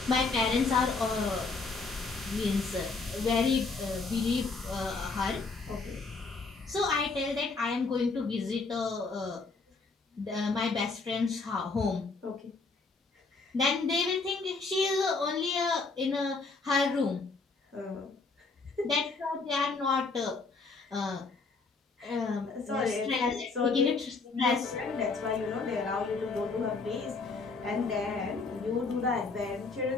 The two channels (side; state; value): right; quieter; 4.1 dB